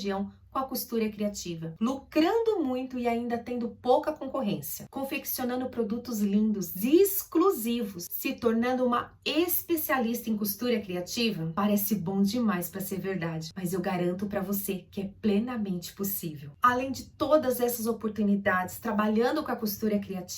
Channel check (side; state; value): both; identical; correlation 1.00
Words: com a costura criativa, lucrando muito e ainda tendo pouca concorrência, confeccionando produtos lindos e exclusivos, se tornando uma especialista em costura criativa. Parece bom demais para ser verdade, mas eu garanto para você que é plenamente possível. Além de todas essas oportunidades, trabalhando com a costura